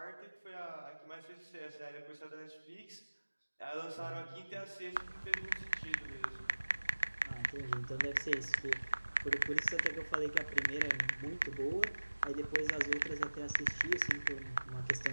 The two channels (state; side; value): inverted; both; correlation -1.00